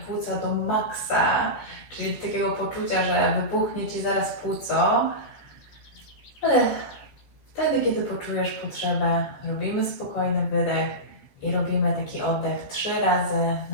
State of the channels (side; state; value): right; late; 14 ms